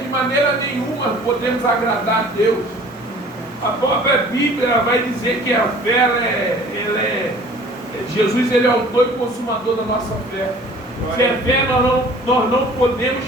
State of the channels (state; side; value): normal; both; correlation 0.49